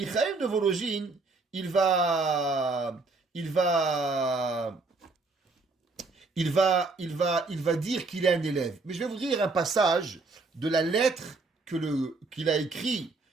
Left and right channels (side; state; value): left; quieter; 3.7 dB